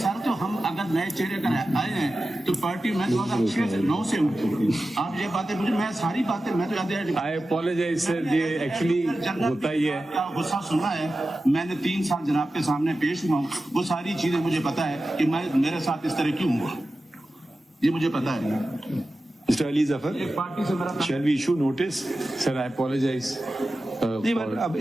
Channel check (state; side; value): normal; both; correlation 0.93